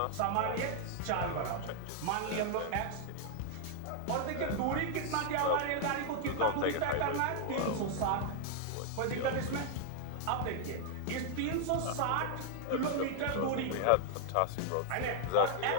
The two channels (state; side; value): different; both; correlation 0.00